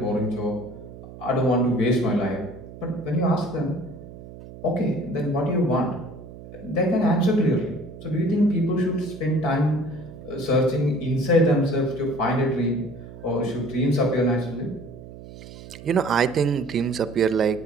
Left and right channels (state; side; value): noise; right; hum, 16 dB below the sound